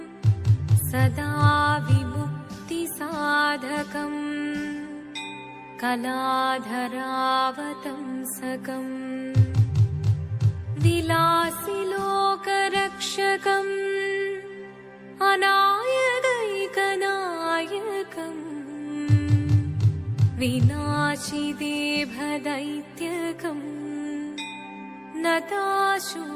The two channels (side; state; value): both; identical; correlation 1.00